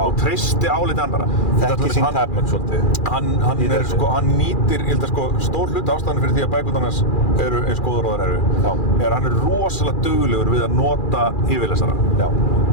treysti álit annarra. Þekki sín tæpmenn svolítið. Hann nýtir, ég held að stór hluti ástæðan fyrir því að bækurnar hans eru eins góðar og þær eru hann er rosalega duglegur við að nota yfirlesara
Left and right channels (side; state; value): right; late; 2.4 ms